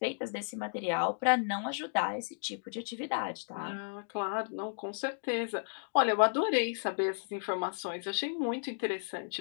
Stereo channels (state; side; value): silent; right; digital silence